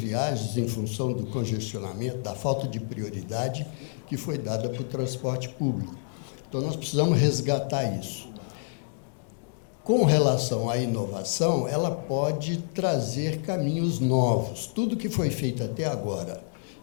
em função do congestionamento, da falta de prioridade que foi dada para o transporte público. Então, nós precisamos resgatar isso. Com relação à inovação, ela pode trazer caminhos novos. Tudo que foi feito até agora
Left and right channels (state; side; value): silent; right; digital silence